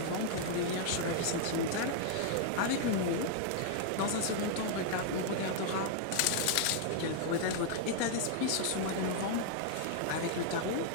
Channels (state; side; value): different; both; correlation -0.01